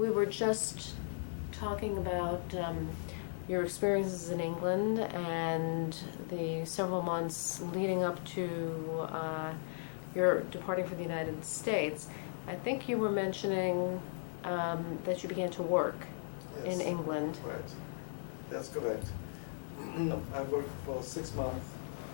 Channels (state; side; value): silent; right; 53 dB below the other